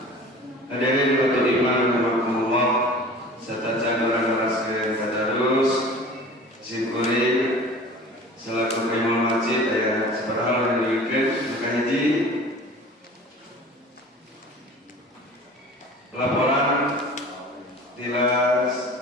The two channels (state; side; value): normal; both; correlation 0.42